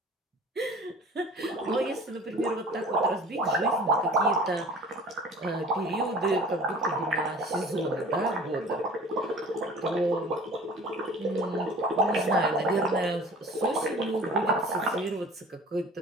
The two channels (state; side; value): normal; both; correlation 0.45